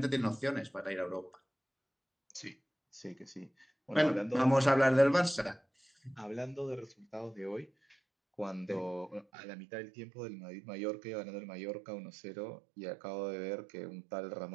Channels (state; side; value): drops out; left; at 9.2 s